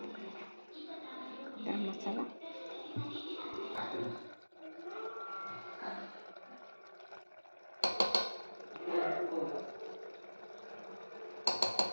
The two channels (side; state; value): both; inverted; correlation -1.00